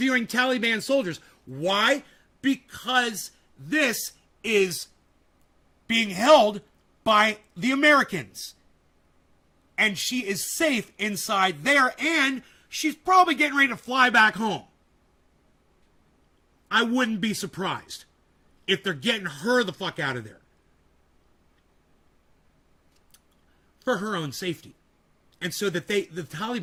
Taliban soldiers? Why? Because this is being held by the Americans. And she is safe inside there, and she's probably getting ready to fly back home. I wouldn't be surprised if they're getting her the fuck out of there. For her own safety. And so that the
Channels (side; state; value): both; identical; correlation 1.00